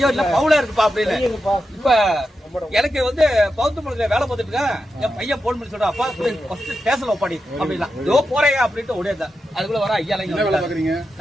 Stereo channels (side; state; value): both; normal; correlation 0.88